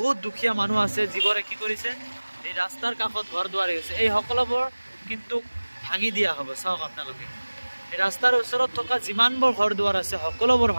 দুখীয়া মানুহ আছে যিবোৰে কি কৰিছে, এই ৰাস্তাৰ কাষত ঘৰ দুৱাৰ হৈছে, এই সকলোবোৰ কিন্তু ভাঙি দিয়া হ'ব। চাওক আপোনালোকে, এই ৰাস্তাৰ ওচৰত থকা যিমানবোৰ ঘৰ দুৱাৰ আছে সকলোবোৰ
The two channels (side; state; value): both; inverted; correlation -1.00